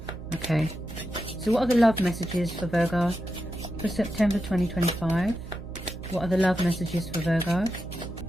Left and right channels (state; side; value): noise; right; hum, 11 dB below the sound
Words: Okay, so what are the love messages for Virgo for September 2025? What are the love messages for Virgo?